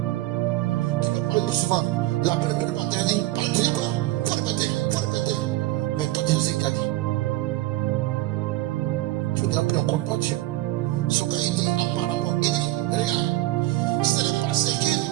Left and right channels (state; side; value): quieter; left; 17.4 dB